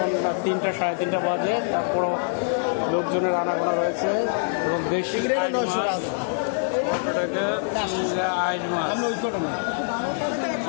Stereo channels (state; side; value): silent; right; digital silence